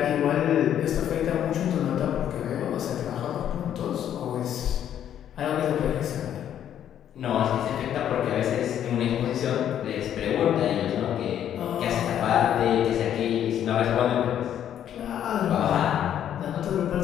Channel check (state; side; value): quieter; right; 10.2 dB